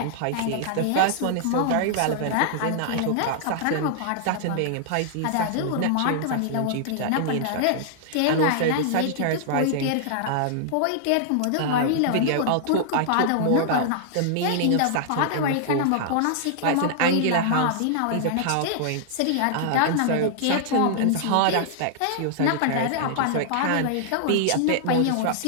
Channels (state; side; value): different; both; correlation -0.01